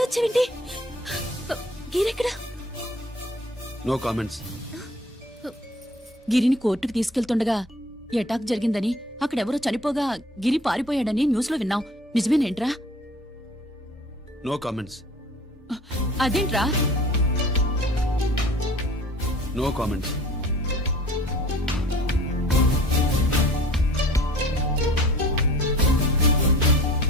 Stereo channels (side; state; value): both; normal; correlation 0.48